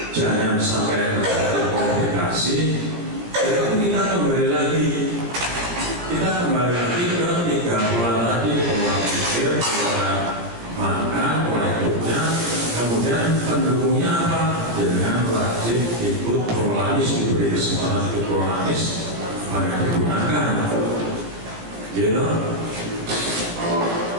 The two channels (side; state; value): left; late; 17 ms